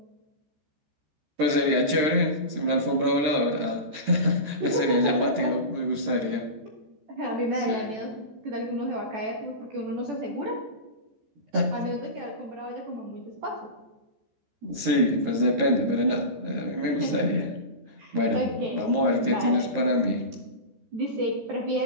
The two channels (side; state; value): left; late; 13 ms